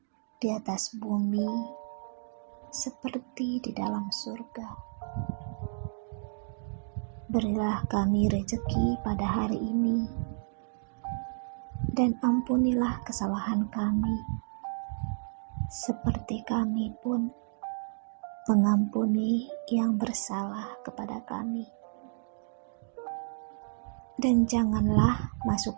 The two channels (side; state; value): left; silent; digital silence